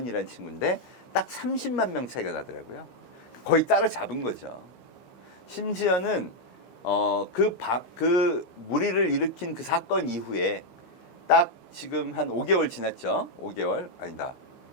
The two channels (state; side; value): late; right; 15 ms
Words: 친구인데 딱 30만 명 차이가 나더라고요. 거의 따라잡은 거죠. 심지어는 그 무리를 일으킨 그 사건 이후에 딱 지금 한 5개월 지났죠. 5개월 아니다.